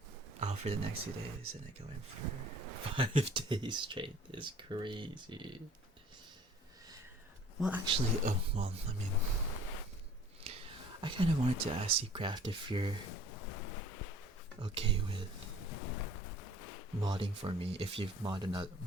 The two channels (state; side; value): normal; both; correlation 0.51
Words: Oh, for the next 2 days, and I go in for 5 days straight is crazy. Well, actually, well, I mean, I kind of wanted to ask you, Craft, if you're okay with modding for me, if you've modded